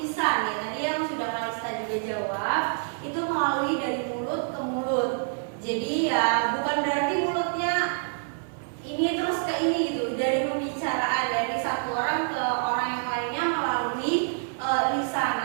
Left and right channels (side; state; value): left; silent; 60 dB below the other